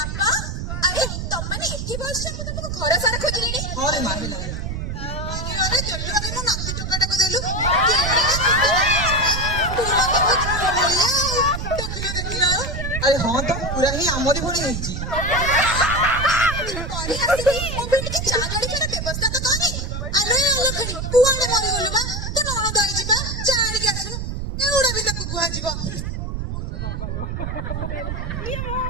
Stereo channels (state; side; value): noise; right; rumble, 4 dB below the sound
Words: अरे तुम माने एठी बस मु तुमको घर सारा खोजलिनी हां रे मां हेला अरे जल्दी अरे मु नाती टोकाटा को देलु अरे हाँ तो पूरा ही आमरी भड़ी ହେଇଛି तोरी आसी मो बेटी के चा गाड़ी के व्यवस्था तो करी अरे अलखणी तू आने मरी गलु बा तो नण दई जिबा चा गाड़ी के आसनु एउडा भी ताकू गुहा जिवो ये मो